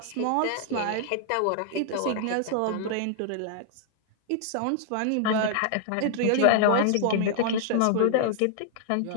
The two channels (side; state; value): both; different; correlation -0.01